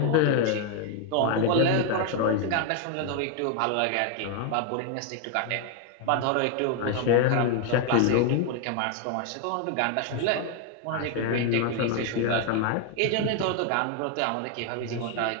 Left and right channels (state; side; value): different; both; correlation 0.01